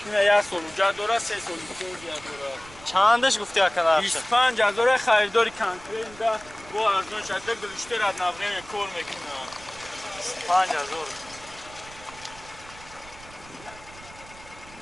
یا سولوجا داره سه سولوجا داره چندش گفتی اکنه 25,000 خریداری کنترل ده با ارزون شده گلشته رد نفرین کور میکنه 25,000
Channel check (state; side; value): noise; right; rumble, 20 dB below the sound